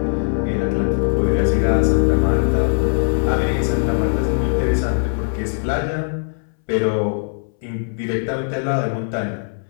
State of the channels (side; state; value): right; silent; 65 dB below the other